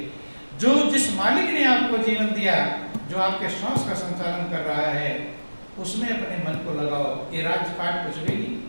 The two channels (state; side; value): inverted; both; correlation -1.00